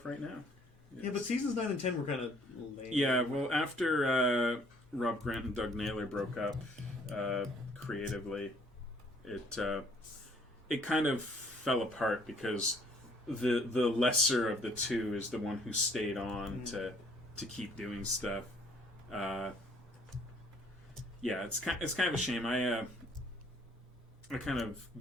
right now. Yes. Yeah, but seasons 9 and 10 were kind of lame. Yeah, well, after Rob Grant and Doug Naylor broke up creatively, it kind of fell apart because the lesser of the two is the one who stayed on to keep doing stuff. Yeah, it's kind of a shame. I kind of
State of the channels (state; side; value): normal; both; correlation 0.60